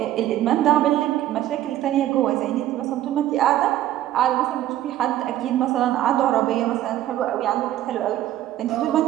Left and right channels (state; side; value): quieter; left; 13.2 dB